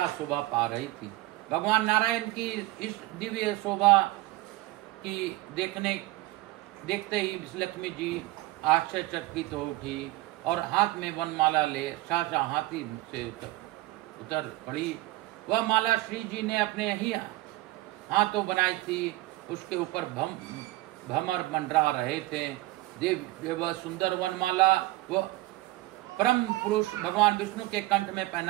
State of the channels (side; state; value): left; quieter; 18.7 dB